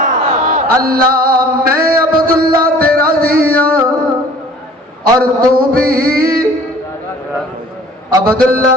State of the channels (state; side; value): normal; both; correlation 0.49